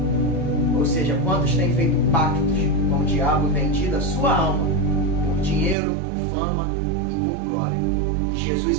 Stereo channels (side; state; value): left; drops out; at 5.8 s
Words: Ou seja, quantos têm feito pactos com o diabo, vendido a sua alma por dinheiro, por fama e por glória. Jesus,